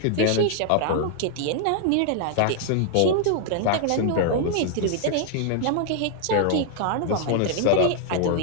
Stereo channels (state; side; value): different; both; correlation 0.00